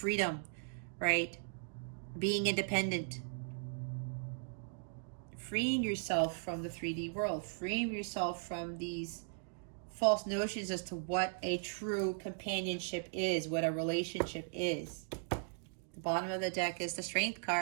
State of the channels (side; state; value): left; silent; digital silence